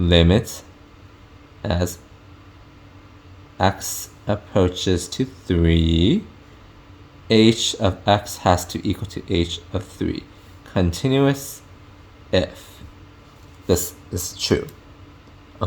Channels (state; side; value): identical; both; correlation 1.00